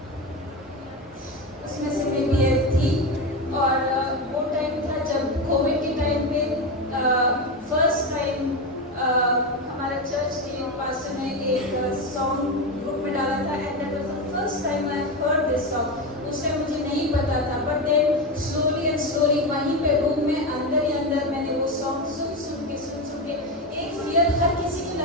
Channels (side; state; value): both; normal; correlation 0.16